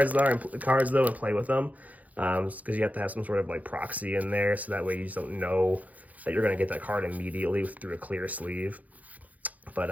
though and play with them, because you have to have some sort of like proxy in there, so that way you just don't know that you're going to get that card immediately through a clear sleeve.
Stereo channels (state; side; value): late; left; 0.076 ms